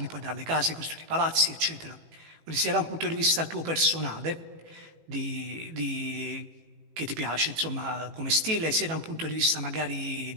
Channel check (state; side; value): late; left; 18 ms